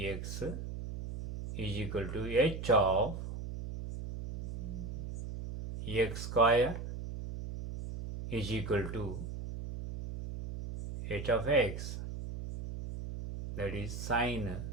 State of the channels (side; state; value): right; noise; hum, 7 dB below the sound